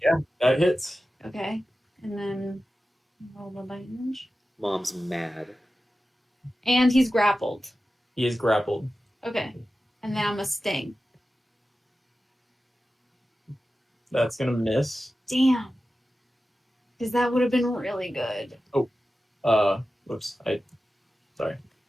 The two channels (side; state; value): both; normal; correlation 0.94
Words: That hits. Okay, and then roll the damage. Mom's mad. And he's grappled. He is grappled. Okay, and then I'm a sting. That's gonna miss. Damn. Because that would have been really good. Whoops. Sorry.